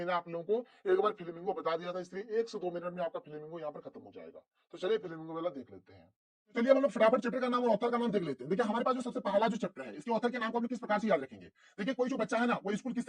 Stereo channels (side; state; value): both; identical; correlation 1.00